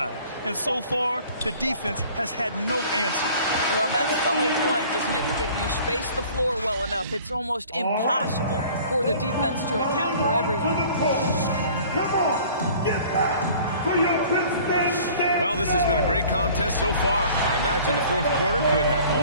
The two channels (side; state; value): both; inverted; correlation -0.49